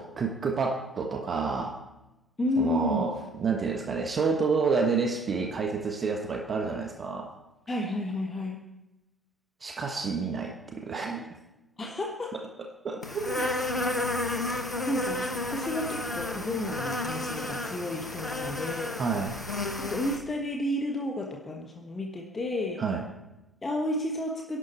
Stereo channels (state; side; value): normal; both; correlation 0.56